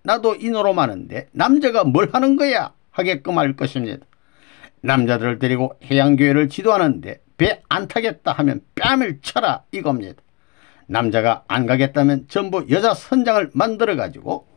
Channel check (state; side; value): quieter; right; 27.1 dB